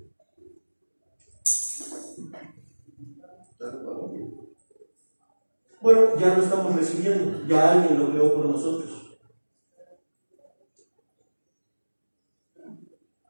Bueno, ya lo estamos recibiendo, ya alguien lo creó por nosotros.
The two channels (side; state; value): both; inverted; correlation -1.00